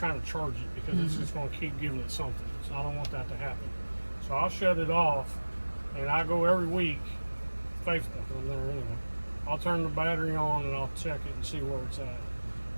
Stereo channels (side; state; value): both; inverted; correlation -1.00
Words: to charge it, because it's just going to keep giving it something. So I don't want that to happen. So I'll shut it off, and I go every week, faithful in there anyway. I'll turn the battery on and I'll check it and see where it's at.